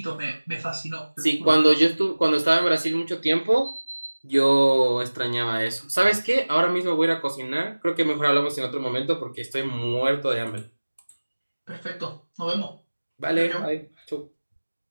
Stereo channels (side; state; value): both; inverted; correlation -1.00